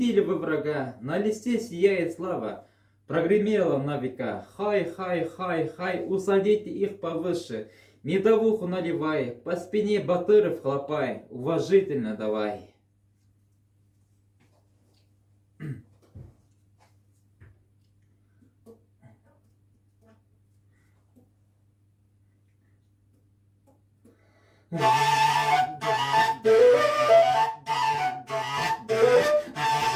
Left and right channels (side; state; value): both; identical; correlation 1.00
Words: вы врага, на листе сияет слава. Прогремело на века, хай, хай, хай, хай, усадите их повыше, медовуху наливай, по спине батыров хлопай, уважительно давай.